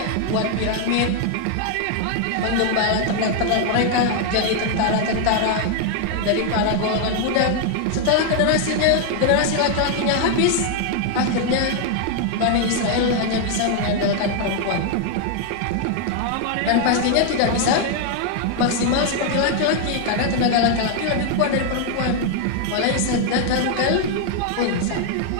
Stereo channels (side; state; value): both; different; correlation 0.00